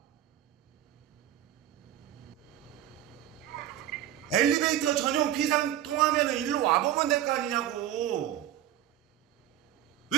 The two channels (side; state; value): left; quieter; 12.0 dB